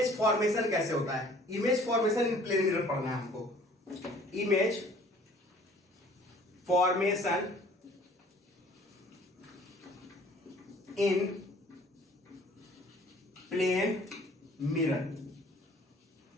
फॉर्मेशन कैसे होता है। Image formation in plane mirror पढ़ना है हमको। Image formation in plane mirror,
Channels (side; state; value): both; normal; correlation 0.53